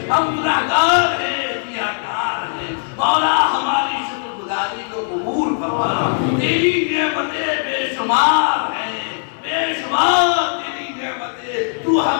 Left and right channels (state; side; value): silent; right; 64 dB below the other